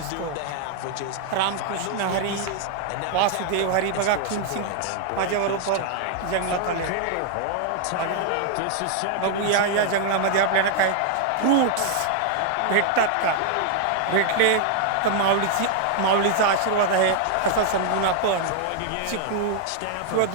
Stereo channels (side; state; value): both; different; correlation 0.00